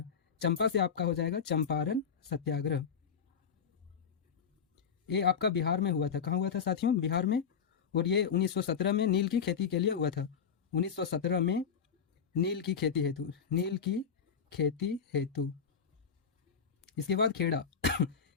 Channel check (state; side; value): quieter; right; 6.8 dB